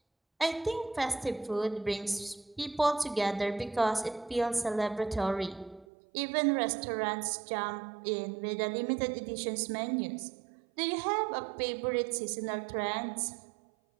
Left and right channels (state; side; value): drops out; left; at 5.9 s